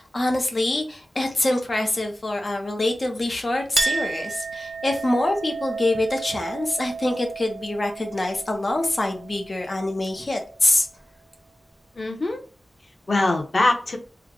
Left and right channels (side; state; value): both; normal; correlation 0.95